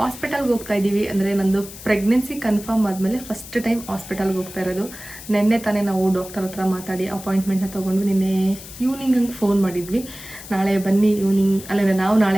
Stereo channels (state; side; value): noise; left; hiss, 15 dB below the sound